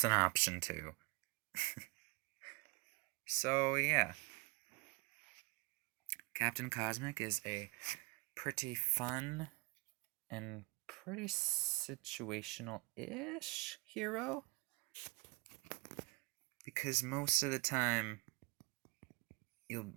an option too. So, yeah. Captain Cosmic is a pretty fun and pretty situational-ish hero. Because most of the time, you'll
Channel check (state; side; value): quieter; left; 26.8 dB